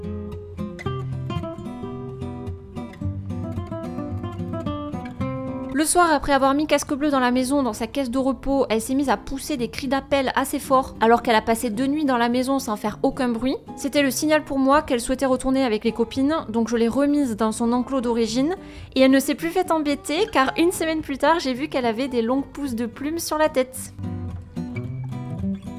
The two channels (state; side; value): identical; both; correlation 1.00